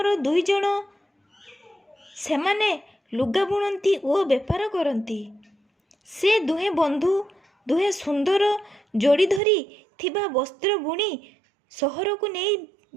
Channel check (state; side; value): drops out; left; at 9.4 s